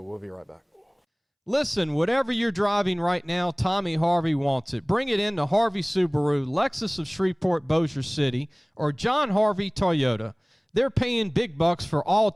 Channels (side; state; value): both; identical; correlation 1.00